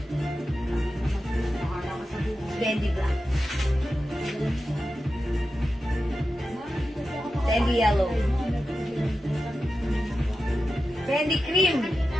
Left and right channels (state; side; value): normal; both; correlation 0.91